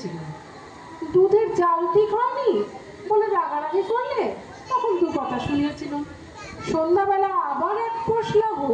দুধের জাল ঠিক হয়নি বলে রাগারাগি করলে তখন দু কথা শুনিয়েছিলাম। সন্ধ্যাবেলা আবার এক পশলা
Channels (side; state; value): both; identical; correlation 1.00